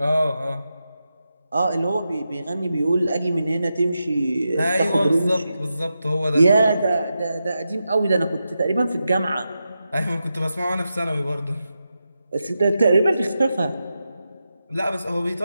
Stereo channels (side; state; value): both; inverted; correlation -0.89